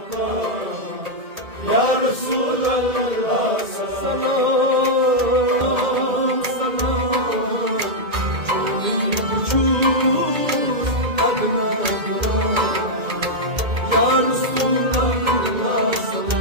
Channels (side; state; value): left; late; 2.1 ms